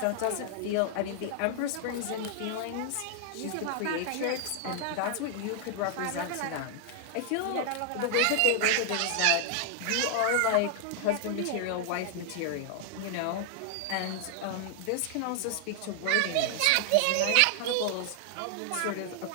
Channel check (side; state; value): both; different; correlation 0.00